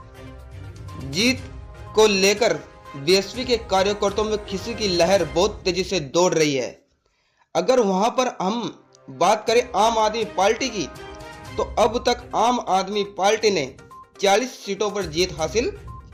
जीत को लेकर बीएसपी के कार्यकर्ताओं में खुशी की लहर बहुत तेजी से दौड़ रही है। अगर वहां पर हम बात करें आम आदमी पार्टी की, तो अब तक आम आदमी पार्टी ने 40 सीटों पर जीत हासिल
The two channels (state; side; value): identical; both; correlation 1.00